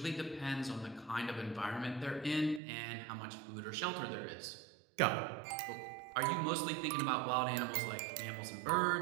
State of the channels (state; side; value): drops out; left; at 2.6 s